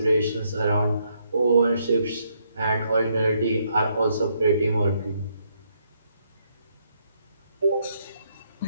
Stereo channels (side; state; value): both; inverted; correlation -0.74